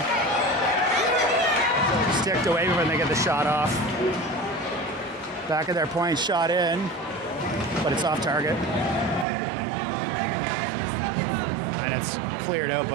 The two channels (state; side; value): drops out; left; at 9.2 s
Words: Sticked away when they get the shot off. Back of their point, shot in, but it's off target. And it's cleared out